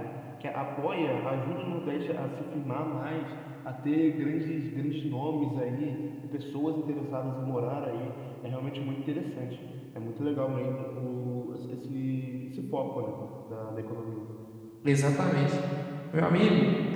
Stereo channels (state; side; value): identical; both; correlation 1.00